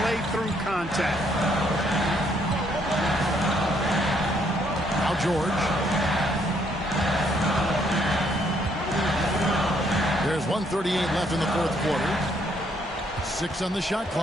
through contact. Now George. There's 1:38 left in the fourth quarter. 6 on the shot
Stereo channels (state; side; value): normal; both; correlation 0.70